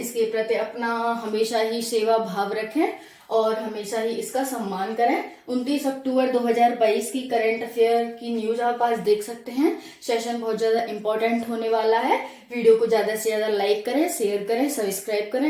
प्रति अपना हमेशा ही सेवा भाव रखें और हमेशा ही इसका सम्मान करें। 29 अक्टूबर 2022 की करंट अफेयर की न्यूज आप आज देख सकते हैं। सेशन बहुत ज्यादा इंपॉर्टेंट होने वाला है। वीडियो को ज्यादा से ज्यादा लाइक करें, शेयर करें, सब्सक्राइब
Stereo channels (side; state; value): both; identical; correlation 1.00